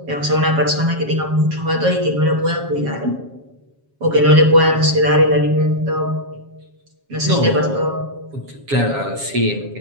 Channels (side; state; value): left; late; 7.3 ms